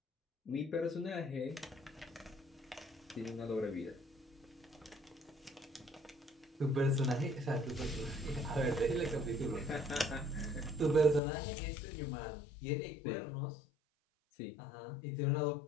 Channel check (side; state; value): right; drops out; at 11.2 s